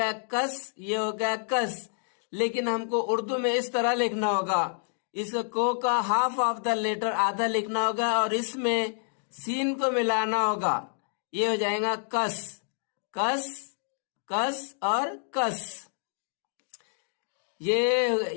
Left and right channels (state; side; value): silent; right; digital silence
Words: कस, ये हो गया कस, लेकिन हमको उर्दू में इस तरह लिखना होगा। इसका को का हाफ ऑफ द लेटर आधा लिखना होगा और इसमें सीन को मिलाना होगा, ये हो जाएगा कस, कस, कस और कस।